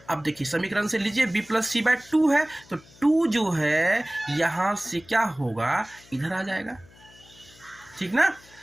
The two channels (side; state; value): left; noise; hum, 25 dB below the sound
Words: अब देखिए समीकरण से लीजिए b प्लस सी बाय 2 है तो 2 जो है यहाँ से क्या होगा इधर आ जाएगा, ठीक ना।